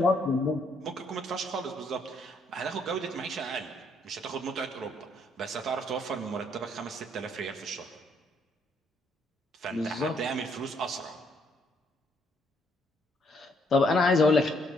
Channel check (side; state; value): both; normal; correlation 0.70